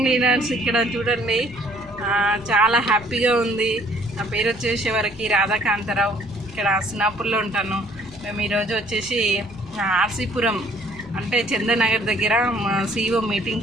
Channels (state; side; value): noise; left; rumble, 20 dB below the sound